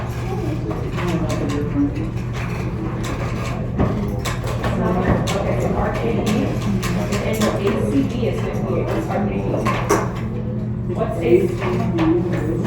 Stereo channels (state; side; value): identical; both; correlation 1.00